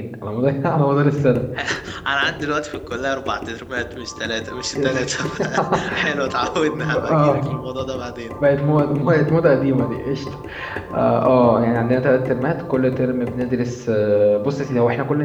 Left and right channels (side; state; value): both; identical; correlation 1.00